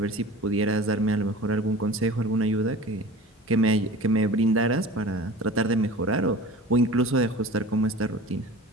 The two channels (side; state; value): both; normal; correlation 0.38